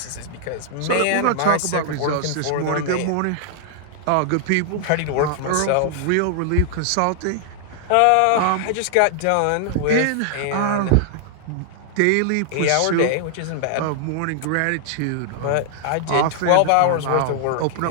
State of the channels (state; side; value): different; both; correlation -0.01